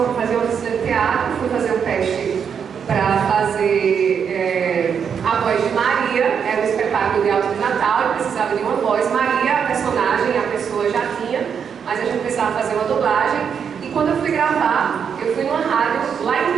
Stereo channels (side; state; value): left; quieter; 7.2 dB